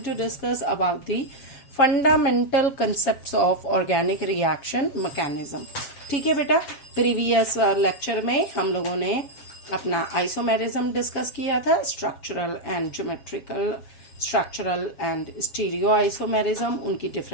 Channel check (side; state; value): right; late; 7.4 ms